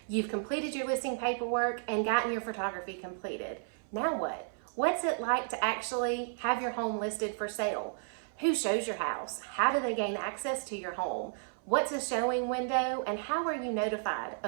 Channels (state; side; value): silent; left; 56 dB below the other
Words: You've completed your listing paperwork and gotten your photography completed. Now what? What's it like to actually have your home listed for sale? Who shows your house? How do they gain access to your home? What's a showing window? And how are you notified